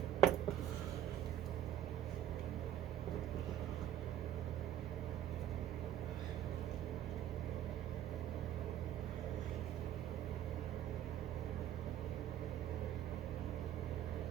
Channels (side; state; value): left; quieter; 11.2 dB